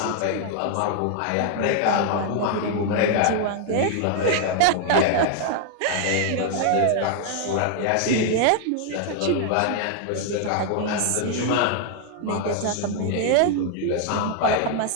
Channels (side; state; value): both; different; correlation 0.00